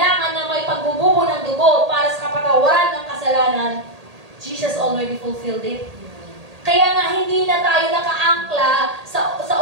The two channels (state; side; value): late; left; 1.8 ms